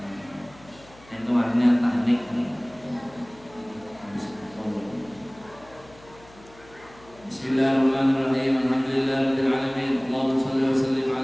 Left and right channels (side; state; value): left; noise; hum, 24 dB below the sound